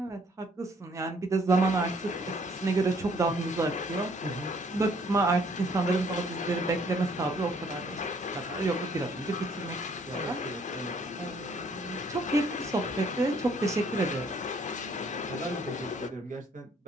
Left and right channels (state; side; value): normal; both; correlation 0.63